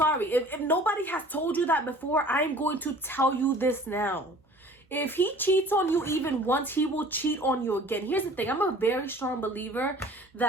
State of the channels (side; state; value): both; normal; correlation 0.48